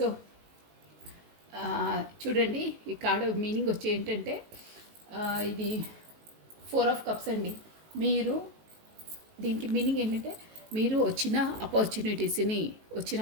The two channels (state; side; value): late; left; 19 ms